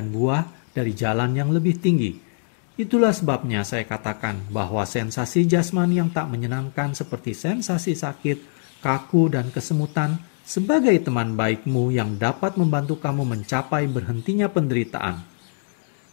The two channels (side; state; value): right; silent; digital silence